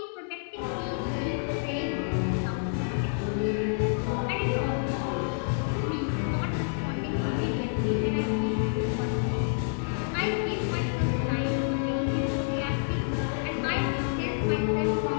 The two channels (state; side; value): silent; right; 59 dB below the other